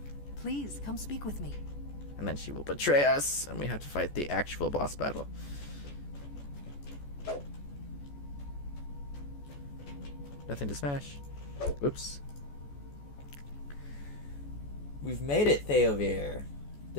Please, come speak with me. And then she will betray us, and we have to fight the actual boss battle. Nothing to smash. Whoops. We've made it, Theovir.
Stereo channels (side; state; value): right; late; 14 ms